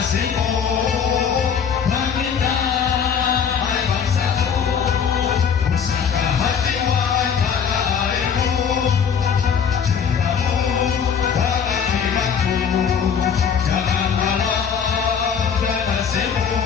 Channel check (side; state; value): right; quieter; 7.0 dB